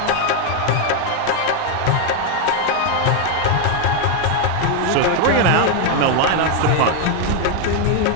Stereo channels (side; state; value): both; different; correlation 0.01